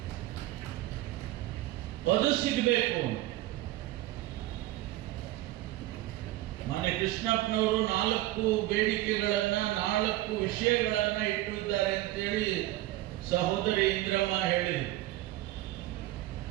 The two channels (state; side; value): quieter; left; 16.3 dB